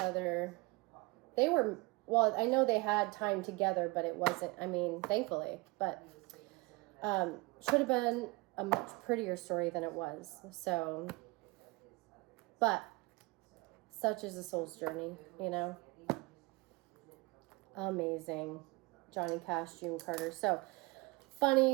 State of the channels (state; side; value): quieter; left; 25.4 dB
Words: They were, well, I know they had time together, but it wasn't, I mean, thankfully, but should have been a much prettier story than it was. So, but such is a soul's journey, you know. Amazing. Johnny Cash, June Carter. So